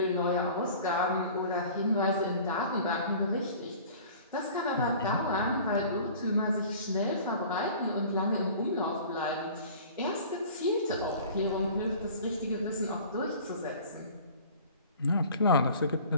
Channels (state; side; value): inverted; both; correlation -0.45